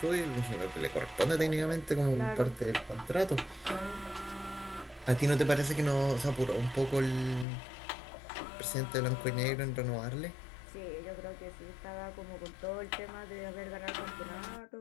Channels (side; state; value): right; drops out; at 7.5 s